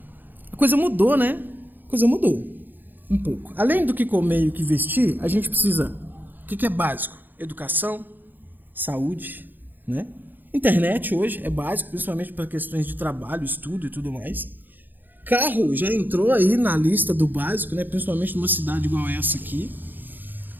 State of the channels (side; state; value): left; late; 0.089 ms